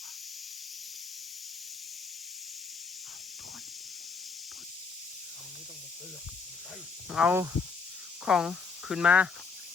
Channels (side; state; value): right; quieter; 5.0 dB